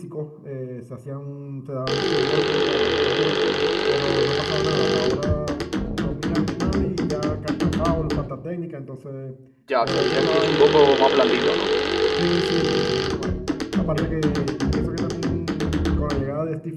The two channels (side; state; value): both; identical; correlation 1.00